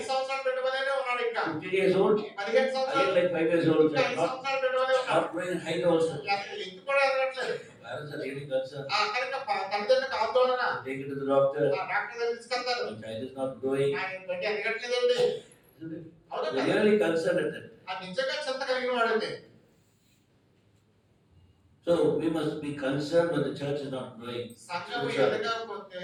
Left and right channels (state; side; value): identical; both; correlation 1.00